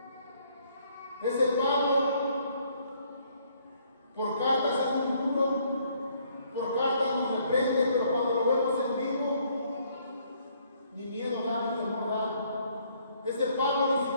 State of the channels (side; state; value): both; inverted; correlation -0.66